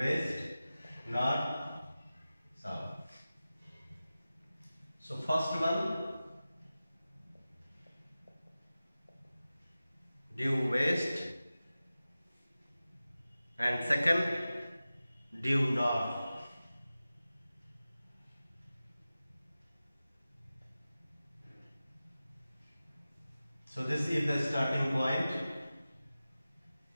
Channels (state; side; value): inverted; both; correlation -0.95